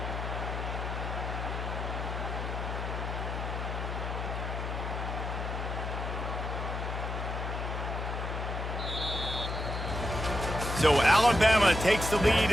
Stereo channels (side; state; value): left; noise; hum, 4 dB below the sound